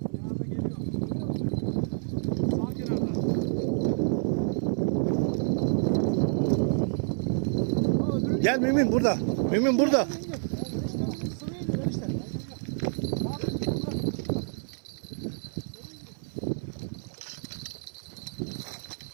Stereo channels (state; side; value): silent; left; 59 dB below the other